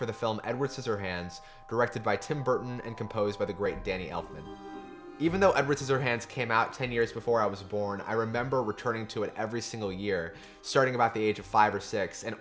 the film Edward Scissorhands, directed by Tim Burton and composed by the great Danny Elfman. Even though Edward Scissorhands came out 10 years before I was born, I remember returning to it every single year, starting about the age of 5 or 6, and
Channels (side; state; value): both; identical; correlation 1.00